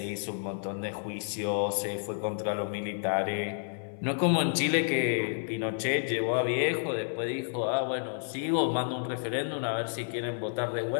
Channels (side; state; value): right; silent; 58 dB below the other